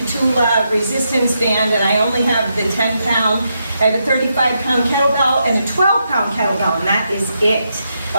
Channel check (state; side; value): inverted; both; correlation -0.82